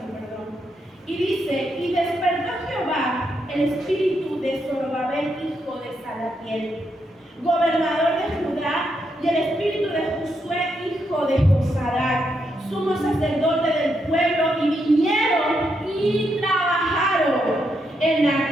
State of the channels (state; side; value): normal; both; correlation 0.80